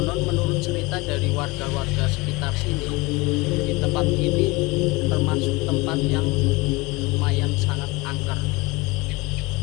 menurut cerita dari warga-warga sekitar sini, di tempat ini termasuk tempat yang lumayan sangat angker.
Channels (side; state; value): right; quieter; 24.0 dB